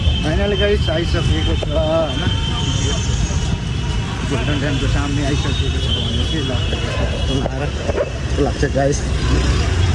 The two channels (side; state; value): both; identical; correlation 1.00